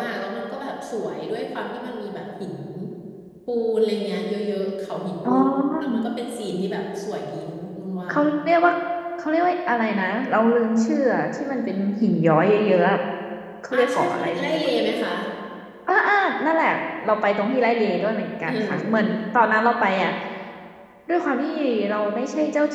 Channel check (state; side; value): identical; both; correlation 1.00